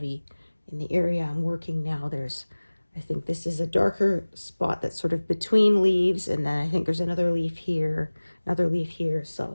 in the area I'm working now. I think this is a darker spot that's sort of between leaves, and then I think there's another leaf here,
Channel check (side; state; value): both; inverted; correlation -1.00